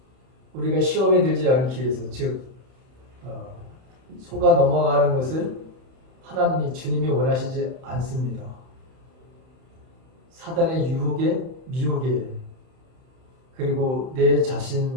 우리가 시험에 들지 않기 위해서, 즉 속아 넘어가는 것을 주님이 원하시지 않습니다. 사단의 유혹에, 미혹에, 그리고 내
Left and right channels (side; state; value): left; late; 31 ms